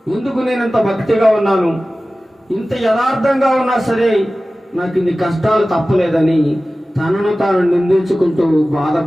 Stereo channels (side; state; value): both; normal; correlation 0.96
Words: ఎందుకు నేను ఇంత భక్తిగా ఉన్నాను, ఇంత యథార్థంగా ఉన్నా సరే నాకు ఇన్ని కష్టాలు తప్పలేదని తనను తాను నిందించుకుంటూ,